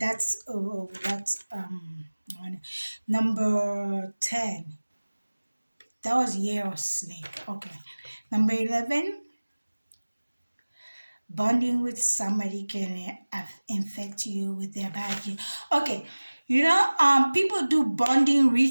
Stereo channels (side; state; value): both; inverted; correlation -1.00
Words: number 10. That was year of snake. Okay, number 11. Bonding with somebody can infect you with their bad gene. Okay, people do bonding